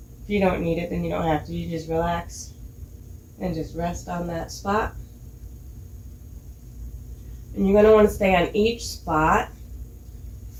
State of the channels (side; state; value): both; identical; correlation 1.00